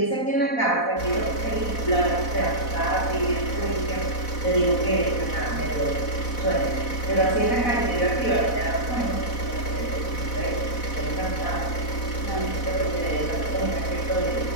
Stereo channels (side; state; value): right; late; 4.0 ms